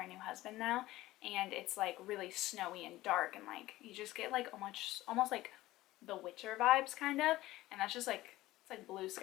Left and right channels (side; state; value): right; quieter; 17.0 dB